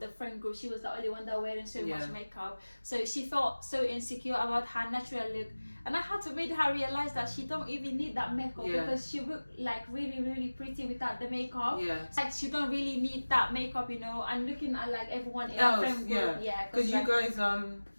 friend group she was the only one that wearing so much makeup. So she felt so insecure about her natural look, and I had to make her realize that she don't even need that makeup because she looked like really really pretty without the makeup. Like she don't really need that makeup, you know. And looking at like everyone in her friend group, because like, you guys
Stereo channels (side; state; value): both; inverted; correlation -1.00